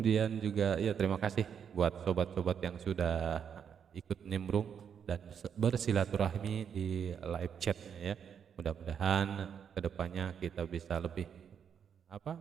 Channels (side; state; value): left; quieter; 7.7 dB